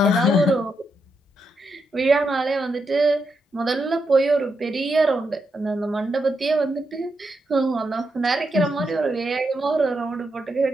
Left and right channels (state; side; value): normal; both; correlation 0.83